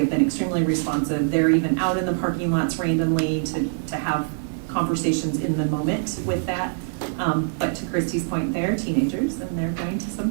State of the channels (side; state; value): left; silent; digital silence